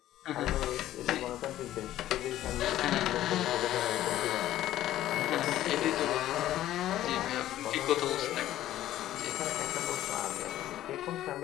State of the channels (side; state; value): right; quieter; 13.5 dB